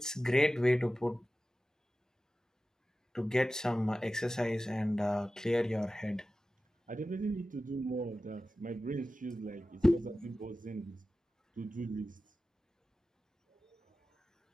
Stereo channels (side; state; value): both; normal; correlation 0.94